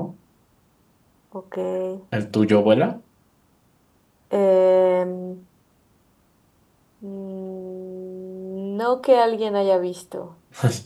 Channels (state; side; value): identical; both; correlation 1.00